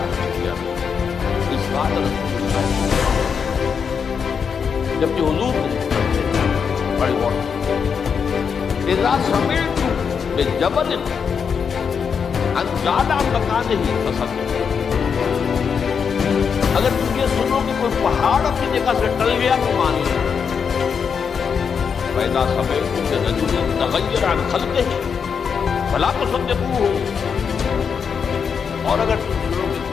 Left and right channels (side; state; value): right; quieter; 6.5 dB